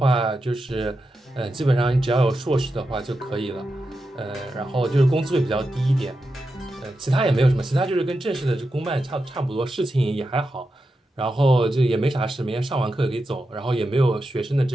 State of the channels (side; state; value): both; normal; correlation 0.89